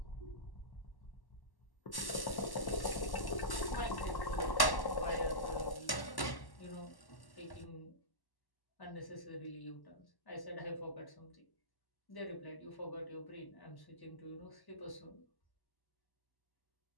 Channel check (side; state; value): right; late; 1.1 ms